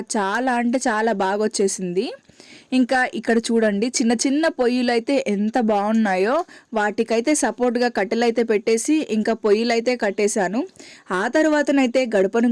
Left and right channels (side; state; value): both; identical; correlation 1.00